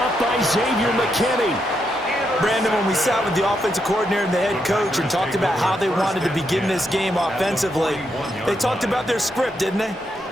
by Xavier McKinney. Brandon, when we sat with the offensive coordinator and the head coach and talked about how they wanted to begin this game offensively, they talked about their script, didn't they?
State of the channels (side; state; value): both; normal; correlation 0.81